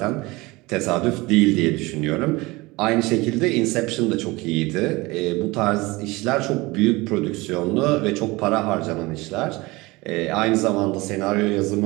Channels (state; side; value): quieter; left; 22.3 dB